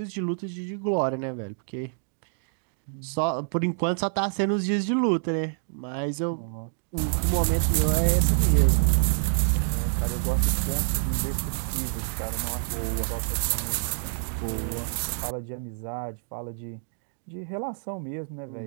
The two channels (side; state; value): left; silent; digital silence